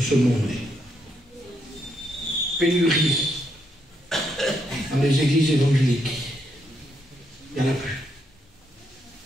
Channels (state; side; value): normal; both; correlation 0.77